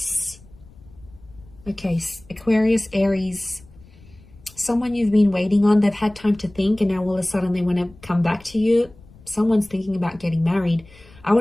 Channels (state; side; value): noise; left; rumble, 24 dB below the sound